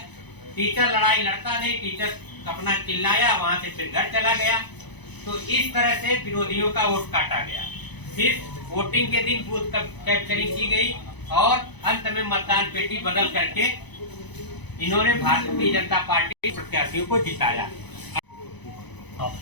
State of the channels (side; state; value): right; late; 0.99 ms